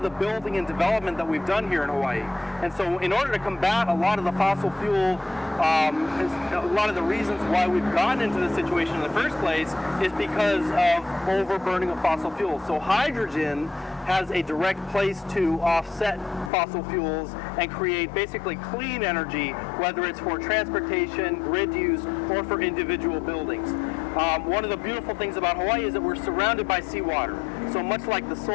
the building and development that we've done here in Hawaii. And so in order to combat a lot of the fossil fuel, a lot of the reasons why we've gotten into this situation in the first place is because of overburning of fossil fuels. So hydrogen has a direct place to offset fossil fuels and create basically clean energy, whether it's for transportation, grid use, or for individual buildings. One of the beautiful things about Hawaii is that we're surrounded by seawater. So much like the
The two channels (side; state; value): right; drops out; at 16.5 s